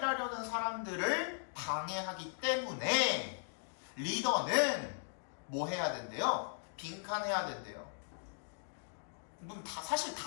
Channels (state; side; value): silent; right; digital silence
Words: 사람들을 방해하기 때문에 리더는 뭐 해야 된대요? 빈칸해야 된대요. 그럼 사실